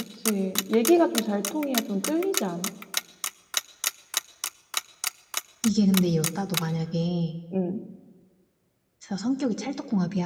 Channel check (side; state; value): both; identical; correlation 1.00